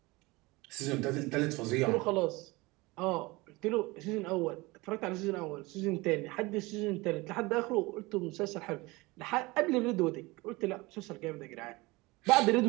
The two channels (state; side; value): quieter; left; 22.7 dB